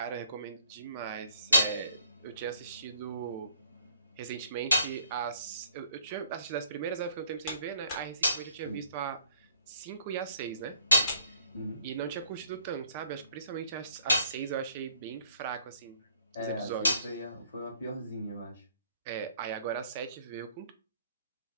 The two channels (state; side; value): inverted; both; correlation -0.60